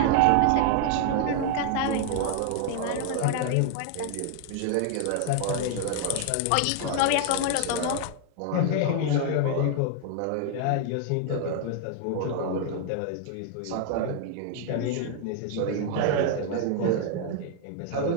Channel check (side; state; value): both; different; correlation 0.00